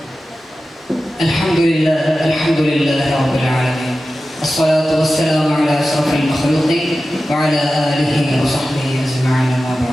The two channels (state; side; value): normal; both; correlation 0.94